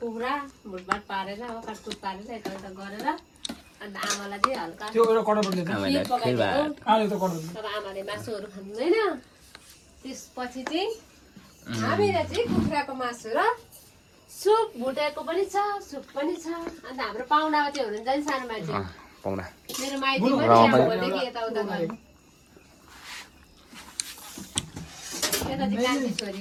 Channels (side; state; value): both; identical; correlation 1.00